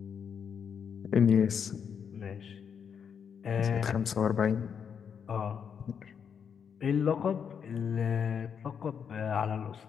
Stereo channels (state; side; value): quieter; right; 7.2 dB